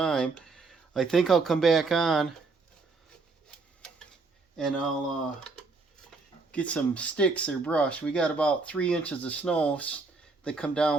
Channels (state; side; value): quieter; left; 3.8 dB